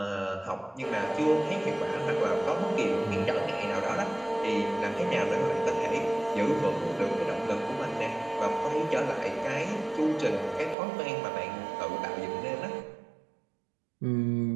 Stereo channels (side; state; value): left; drops out; at 10.8 s